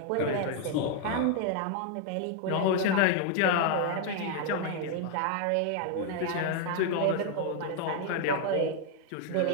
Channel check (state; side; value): different; both; correlation 0.00